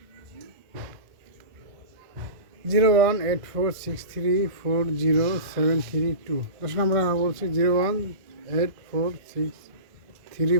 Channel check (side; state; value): left; late; 1.5 ms